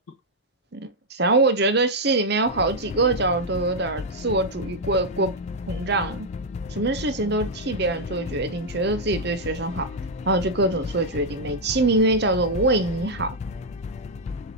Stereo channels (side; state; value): both; normal; correlation -0.01